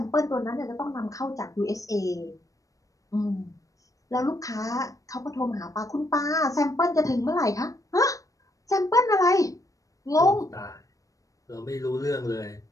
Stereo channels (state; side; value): late; right; 0.16 ms